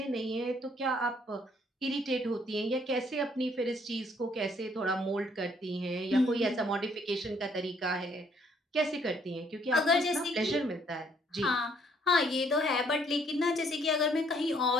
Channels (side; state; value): both; normal; correlation 0.65